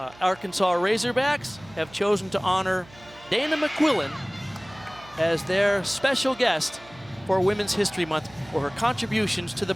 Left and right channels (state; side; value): noise; right; hum, 23 dB below the sound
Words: Arkansas Razorbacks have chosen to honor Dana McQuillan as their special guest for Women's History Month for her contributions to the